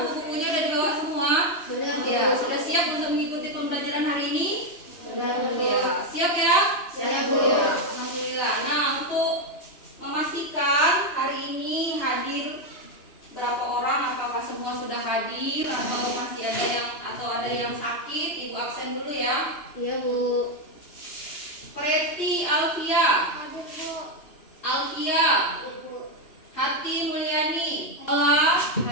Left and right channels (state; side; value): late; right; 2.9 ms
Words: sudah dibawa semua? Sudah, Bu. Ya, sudah siap untuk mengikuti pembelajaran hari ini? Sudah, Bu. Ya, siap ya? Siap, Bu. Ya, alhamdulillah. Nah, untuk memastikan hari ini hadir berapa orang, apakah semua sudah hadir atau masih ada yang sakit, Ibu absen dulu ya. Iya, Bu. Preti Alfia, Hadir, Bu. Alfia, Hadir, Bu. Hati Mulyani, Ola,